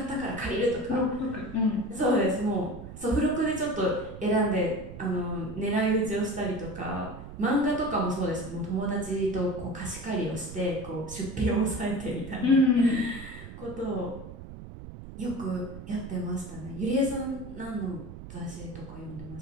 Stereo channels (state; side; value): noise; right; rumble, 13 dB below the sound